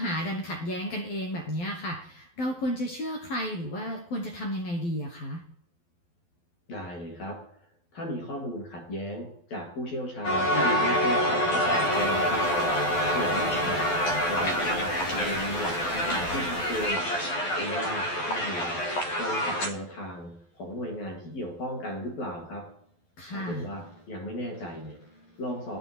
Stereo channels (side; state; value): right; late; 12 ms